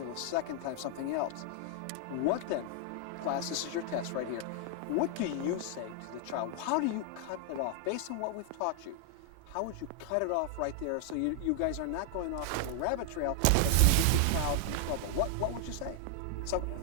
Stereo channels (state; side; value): different; both; correlation 0.00